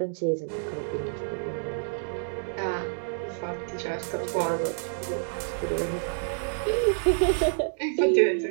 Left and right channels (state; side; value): silent; left; digital silence